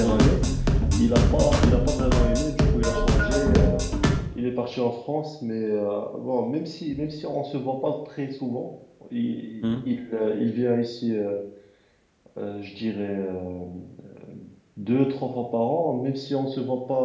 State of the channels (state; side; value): identical; both; correlation 1.00